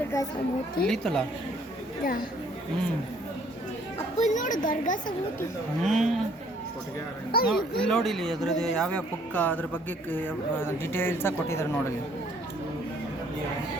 ಇಳಿತಲ್ಲ. ಇಲ್ಲಿ ನೋಡಿ, ಇಲ್ಲಿ ಅದ್ರದ್ದು ಯಾವ್ಯಾವ ಪುಕ್ಕ ಅದ್ರ ಬಗ್ಗೆ ಡೀಟೇಲ್ಸಾಗಿ ಕೊಟ್ಟಿದ್ದಾರೆ ನೋಡಲಿ.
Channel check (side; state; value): both; normal; correlation 0.62